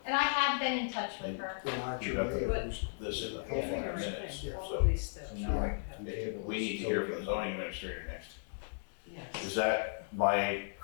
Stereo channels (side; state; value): right; silent; digital silence